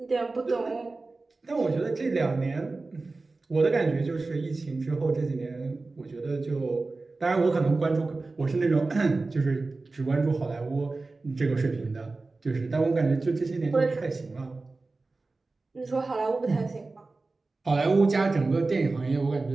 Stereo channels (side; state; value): left; quieter; 3.5 dB